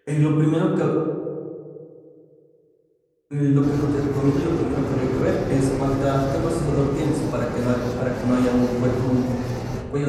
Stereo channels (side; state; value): both; identical; correlation 1.00